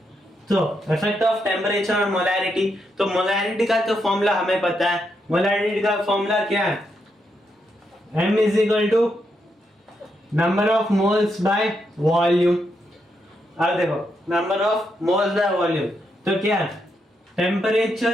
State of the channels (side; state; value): both; normal; correlation 0.81